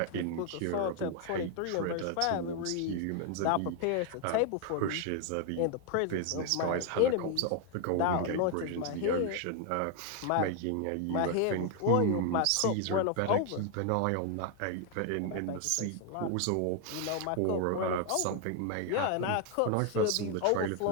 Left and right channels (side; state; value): both; different; correlation 0.00